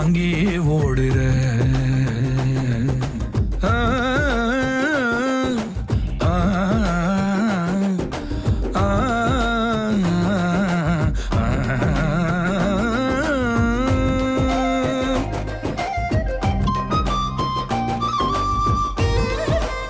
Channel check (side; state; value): both; identical; correlation 1.00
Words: ஓடுற. ஆ ஆ